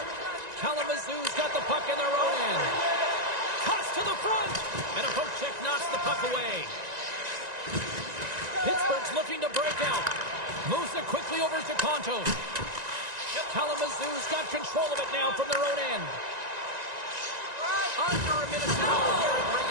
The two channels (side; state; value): left; late; 1.9 ms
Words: Kalamazoo's got the puck in their own end. Toss to the front! And a poke check knocks the puck away. Pittsburgh's looking to break out. Moves it quickly over to Contos. Kalamazoo's got control of it now from their own end. Under a minute to go here in